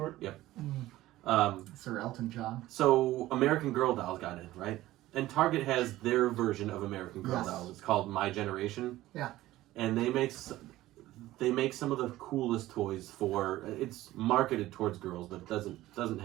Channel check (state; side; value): quieter; left; 16.0 dB